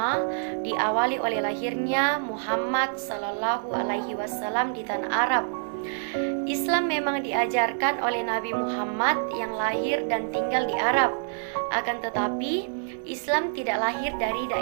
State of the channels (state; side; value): silent; left; 60 dB below the other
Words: diawali oleh lahirnya Muhammad SAW di tanah Arab. Islam memang diajarkan oleh Nabi Muhammad yang lahir dan tinggal di Arab. Akan tetapi, Islam tidak lahir dari